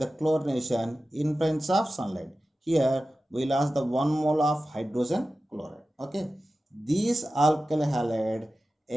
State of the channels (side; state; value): both; normal; correlation 0.94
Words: chlorination in presence of sunlight. Here we lost the 1 mole of hydrogen chloride. Okay, these alkyl halide